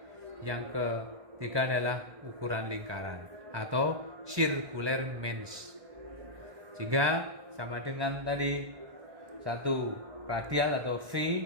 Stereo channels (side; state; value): left; late; 1.2 ms